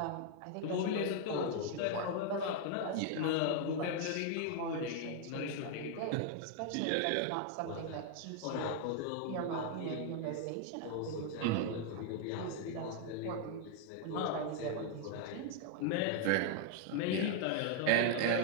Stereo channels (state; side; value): different; both; correlation 0.00